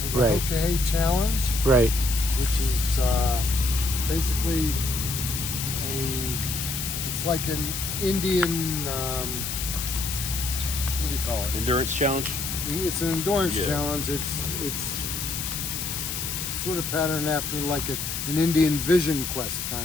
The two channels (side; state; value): left; noise; hiss, 4 dB below the sound